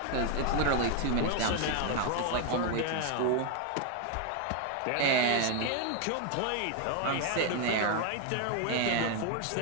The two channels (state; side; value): different; both; correlation 0.01